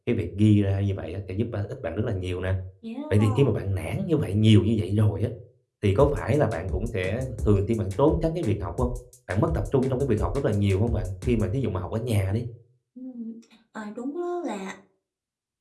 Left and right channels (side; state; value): both; identical; correlation 1.00